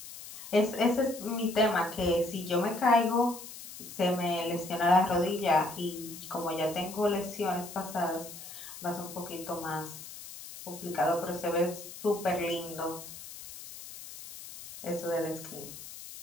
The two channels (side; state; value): left; noise; hiss, 13 dB below the sound